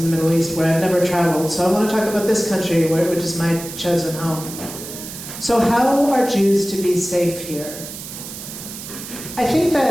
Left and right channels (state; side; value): noise; right; hiss, 11 dB below the sound